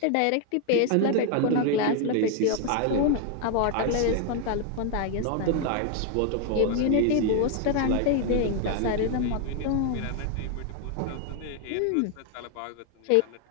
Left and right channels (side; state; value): both; different; correlation 0.00